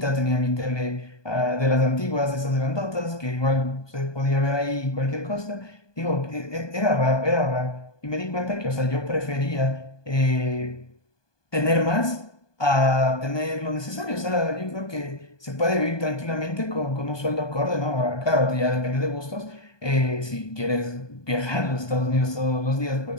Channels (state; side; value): late; right; 1.2 ms